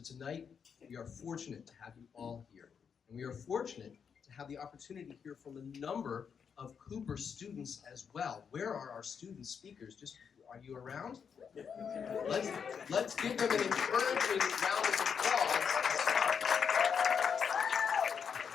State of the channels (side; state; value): right; quieter; 6.8 dB